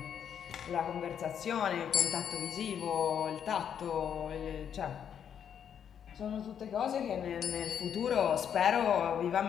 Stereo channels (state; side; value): quieter; right; 8.5 dB